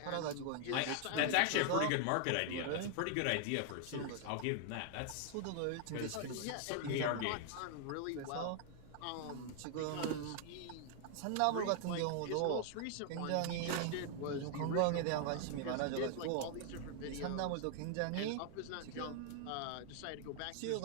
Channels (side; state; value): both; different; correlation 0.00